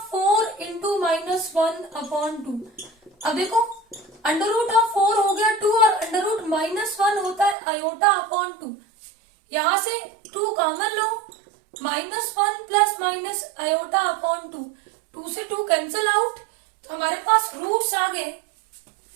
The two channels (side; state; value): left; drops out; at 7.6 s